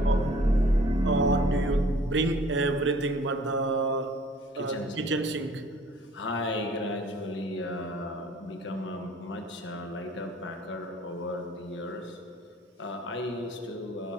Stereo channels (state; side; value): normal; both; correlation 0.53